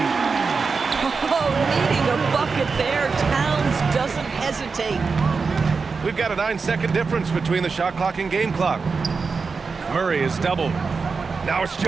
Oh, needing a bucket there. Towns doesn't hesitate. We've got a 9-second difference between the shot clock and game clock. Murray is doubled. Now it's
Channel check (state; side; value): quieter; left; 4.8 dB